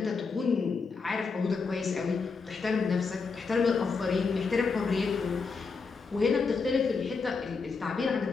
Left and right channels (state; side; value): quieter; right; 4.8 dB